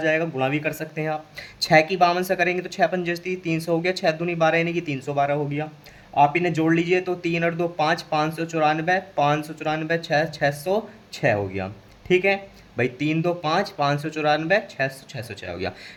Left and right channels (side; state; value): both; identical; correlation 1.00